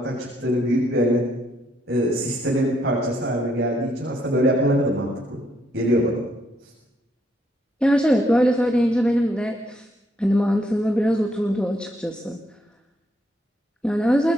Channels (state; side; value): normal; both; correlation 0.73